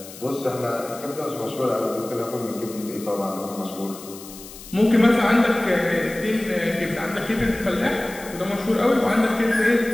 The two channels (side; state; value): left; noise; hiss, 16 dB below the sound